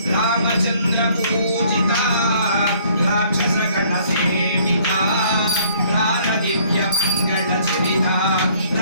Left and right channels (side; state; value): both; inverted; correlation -0.60